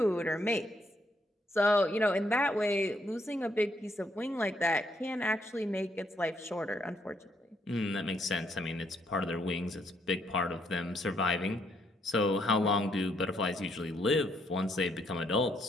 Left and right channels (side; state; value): both; normal; correlation 0.73